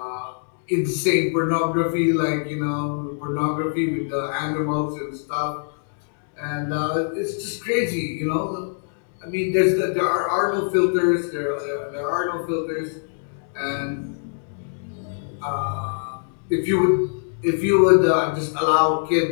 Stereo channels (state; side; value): silent; right; digital silence